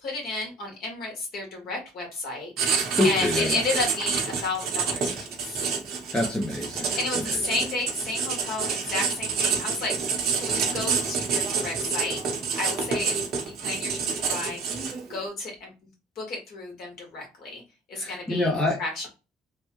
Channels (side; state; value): both; normal; correlation 0.43